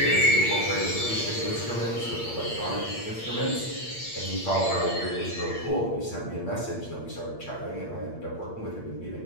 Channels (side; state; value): right; late; 8.7 ms